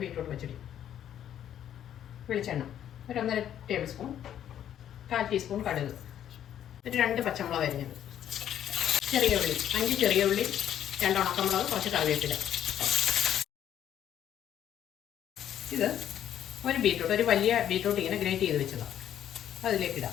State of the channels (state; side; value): quieter; right; 10.4 dB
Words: ബീറ്റ്റൂട്ട് പച്ചടി. വെളിച്ചെണ്ണ ഒരു 1.5 ടേബിൾ സ്പൂൺ, 1/4 ടീസ്പൂൺ കടുക്, ഒരു 2 പച്ചമുളക് അരിഞ്ഞത്, ചെറിയ ഉള്ളി 5 ചെറിയ ഉള്ളി, 2 ഉണക്കമുളക്, കുറച്ച് കറിവേപ്പില. ഇത് ഒരു ബീറ്റ്റൂട്ട്, ഒരു വലിയ ബീറ്റ്റൂട്ട് ഇങ്ങനെ ഗ്രേറ്റ് ചെയ്ത് വെച്ചതാണ്.